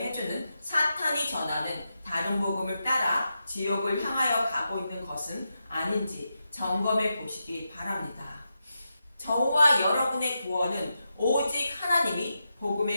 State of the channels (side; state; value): both; inverted; correlation -0.87